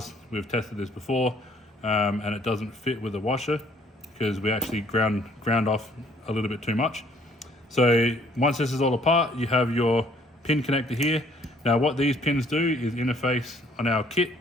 we've tested this before, and it doesn't fit with the washer because we actually ground off a little bit too much. So once this is all apart, you have your pin connector here. Now what these pins do is interface on our kit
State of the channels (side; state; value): both; normal; correlation 0.61